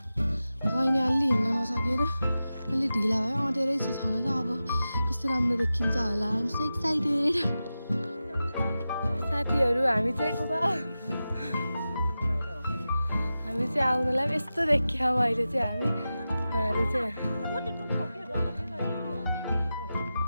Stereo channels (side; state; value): both; inverted; correlation -0.93